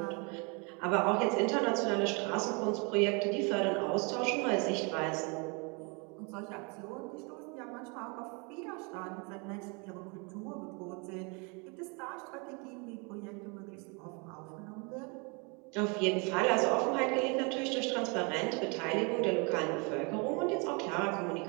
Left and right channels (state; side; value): quieter; left; 31.9 dB